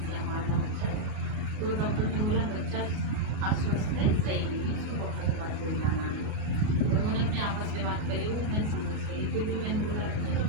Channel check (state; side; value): late; left; 38 ms